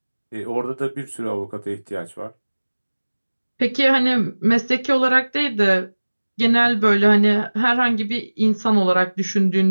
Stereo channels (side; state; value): both; inverted; correlation -1.00